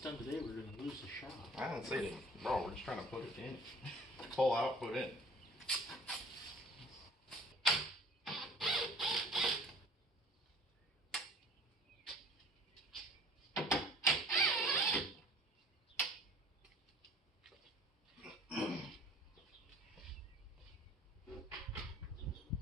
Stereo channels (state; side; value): normal; both; correlation 0.48